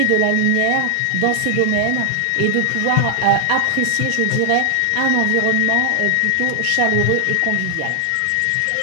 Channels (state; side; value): different; both; correlation 0.00